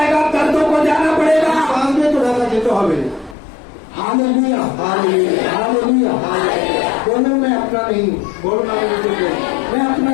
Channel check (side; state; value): right; drops out; at 3.4 s